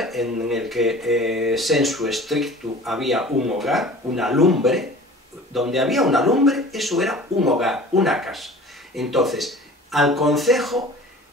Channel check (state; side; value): normal; both; correlation 0.43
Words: en el que sensu stricto había un hogar, una lumbre. Donde había una lumbre, eso era un hogar, una casa. Entonces, al concejo